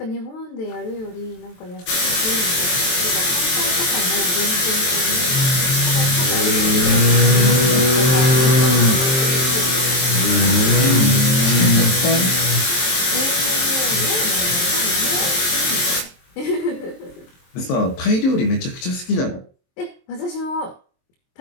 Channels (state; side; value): late; right; 23 ms